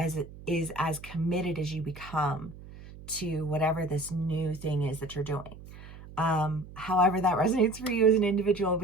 committed as you become to whatever this new thing is that you're doing. However that resonates for you as an individual,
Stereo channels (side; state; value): right; noise; hum, 16 dB below the sound